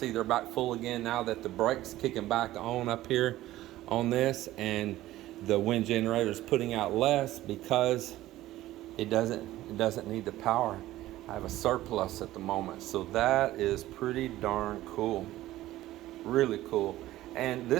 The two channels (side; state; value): left; quieter; 15.5 dB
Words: they're back full again now that the brake's kicking back on up here on this, and the wind generator is putting out less because it doesn't need the power. I have a surplus at the moment, so that is pretty darn cool. Really cool. And